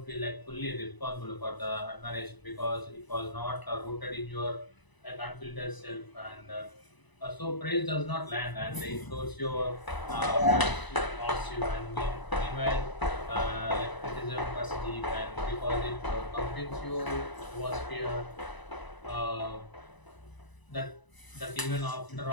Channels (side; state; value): right; late; 1.0 ms